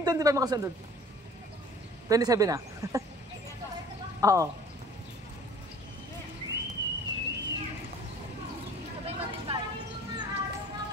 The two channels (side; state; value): both; normal; correlation 0.48